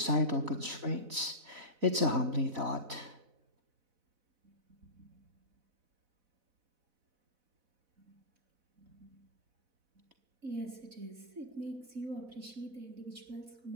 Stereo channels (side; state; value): left; late; 4.0 ms